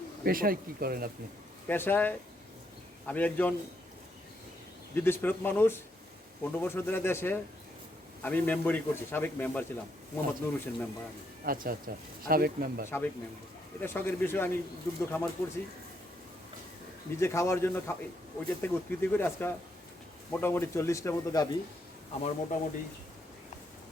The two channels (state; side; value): normal; both; correlation 0.76